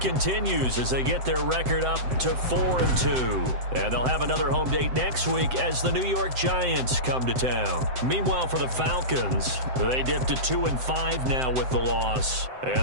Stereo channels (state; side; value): late; left; 7.8 ms